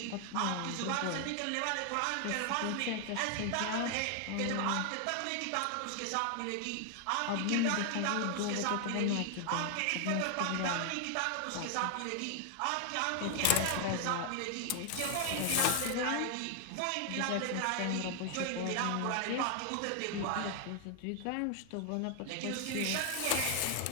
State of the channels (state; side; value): different; both; correlation 0.00